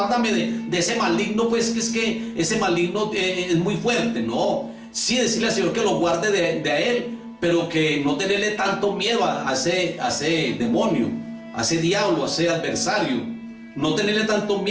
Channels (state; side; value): identical; both; correlation 1.00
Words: de ese maligno, pues que es que ese maligno es muy fuerte. No, sí decirle al Señor que lo guarde de Él, pero que no tenerle tanto miedo a ese demonio, a ese diablo, a ese adversario. No tenerle tanto